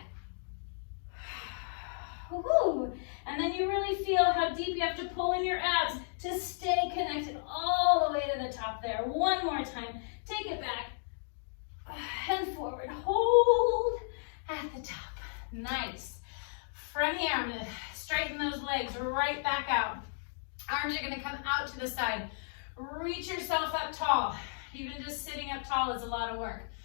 Woo-hoo. And then you really feel how deep you have to pull in your abs to stay connected all the way to the top there. One more time. Take it back and forward. Hold at the top. Nice. From here, I'm going to straighten those legs right back out. Arms are going to come out to the side. Reach yourself up tall. Even just sitting up tall is a lot of work.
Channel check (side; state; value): right; silent; digital silence